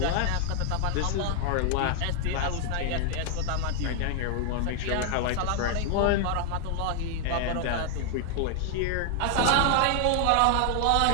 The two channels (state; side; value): different; both; correlation 0.00